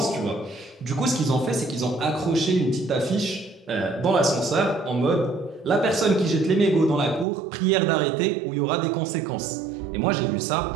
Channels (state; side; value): drops out; left; at 7.2 s